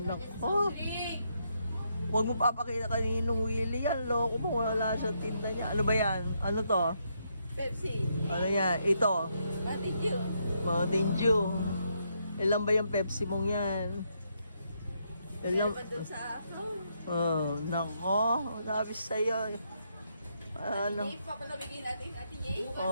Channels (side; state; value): both; inverted; correlation -0.77